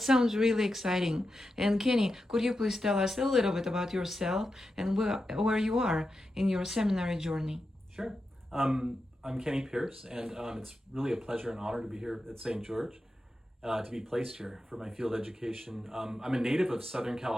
sounds really exciting. And Kenny, could you please tell us a little bit about yourself and where you are in your seminary journey? Sure. I'm Kenny Pierce, and it's really a pleasure and honor to be here at St. George, to be placed here for my field education. I'm a native of Southern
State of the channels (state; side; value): normal; both; correlation 0.89